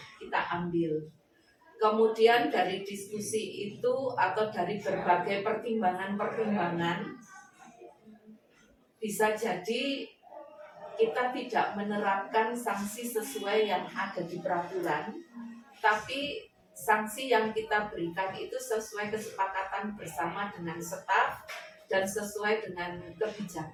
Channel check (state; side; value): identical; both; correlation 1.00